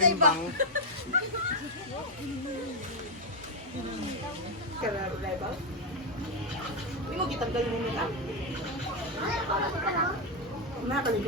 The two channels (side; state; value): both; normal; correlation 0.01